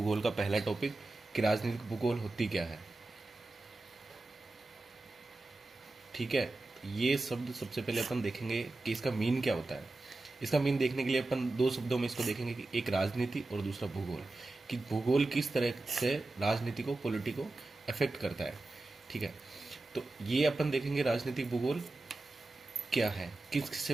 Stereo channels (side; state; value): left; quieter; 3.0 dB